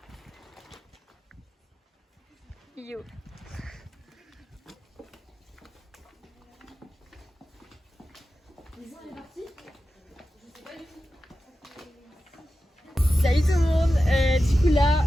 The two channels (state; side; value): normal; both; correlation 0.93